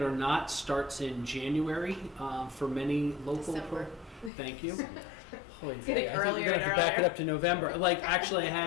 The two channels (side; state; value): right; drops out; at 4.3 s